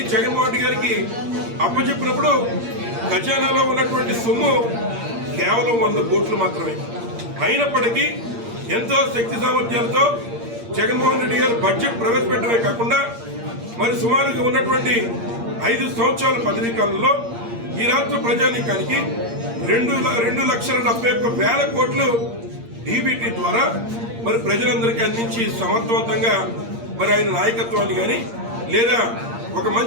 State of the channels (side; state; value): left; late; 8.7 ms